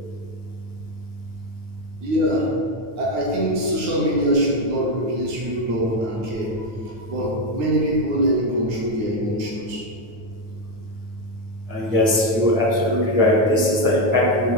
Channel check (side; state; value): left; late; 9.2 ms